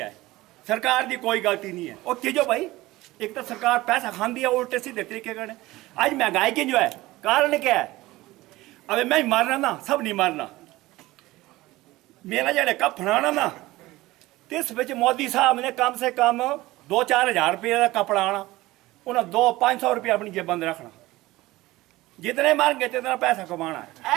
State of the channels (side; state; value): left; quieter; 18.6 dB